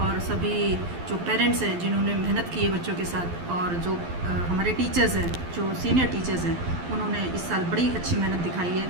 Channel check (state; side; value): late; left; 12 ms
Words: सभी जो पेरेंट्स हैं जिन्होंने मेहनत की है बच्चों के साथ, और जो हमारे टीचर्स हैं, जो सीनियर टीचर्स हैं, उन्होंने इस साल बड़ी अच्छी मेहनत दिखाई है।